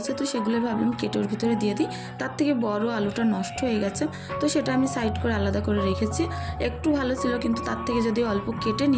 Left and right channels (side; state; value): both; identical; correlation 1.00